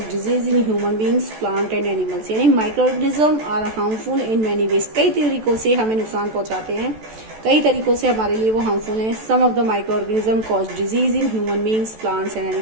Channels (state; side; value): late; left; 14 ms